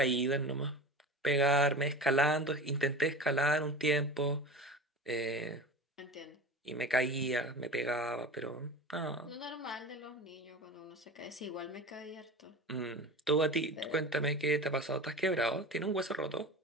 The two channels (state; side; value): normal; both; correlation 0.32